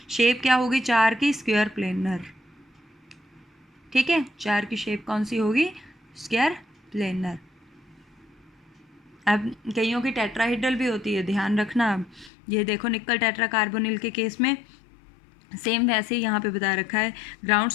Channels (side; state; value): right; drops out; at 12.3 s